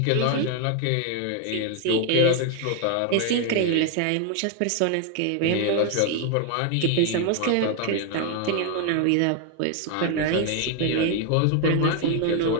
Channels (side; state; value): both; different; correlation 0.01